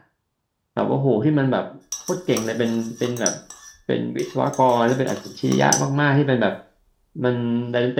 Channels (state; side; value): identical; both; correlation 1.00